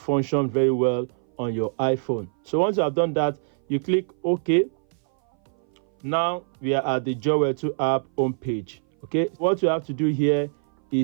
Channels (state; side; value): silent; left; 59 dB below the other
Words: very well on your iPhone. So once you have done that, you click OK. Now we are at the JoyWear 2 app home page. Okay, what you have to do here